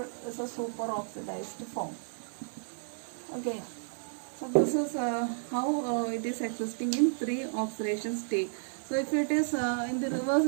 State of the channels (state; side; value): silent; left; 56 dB below the other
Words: as a super oxidized form. Okay, so this is how it is existing in 3 oxidation states. So if it is in the reverse